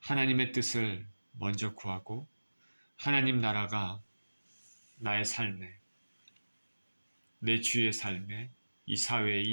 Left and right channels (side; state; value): both; inverted; correlation -1.00